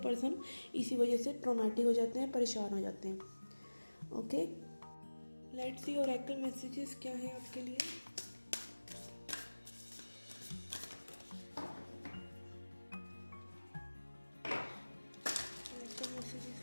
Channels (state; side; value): inverted; both; correlation -1.00